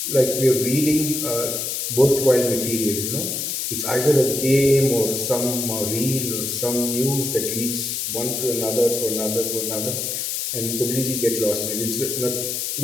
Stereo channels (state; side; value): noise; left; hiss, 2 dB below the sound